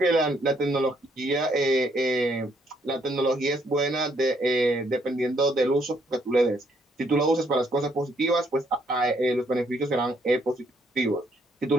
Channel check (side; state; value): both; normal; correlation 0.70